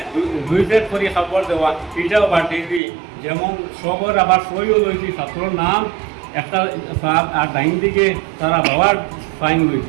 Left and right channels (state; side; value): drops out; left; at 2.8 s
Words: 2 সেট করে কাপড় দেওয়া এটাও বাটি দিই। যেমন সবর আবার সইও লইছি, ছাত্রর নাম একটা আর ডাইন দিকে তারা বাবার সাইন